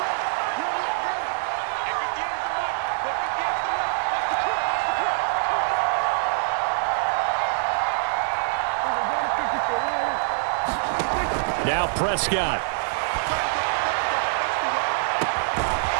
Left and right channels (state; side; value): silent; left; digital silence